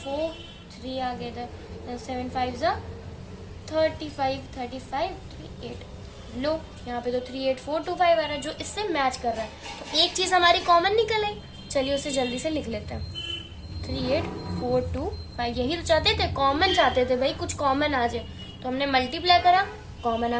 3 आ गया था, 7 5 35, 35 38, लो यहाँ पे तो 38425 आ रहा है, जो इससे मैच कर रहा है। तो एक चीज हमारी कॉमन निकल आई, चलिए उसे जल्दी से लिख लेते हैं 38425। यही तो चाहते थे, कॉमन चाहते थे भाई, कुछ कॉमन आ जाए। तो हमने मल्टीप्लाई करा, कॉमन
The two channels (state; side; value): identical; both; correlation 1.00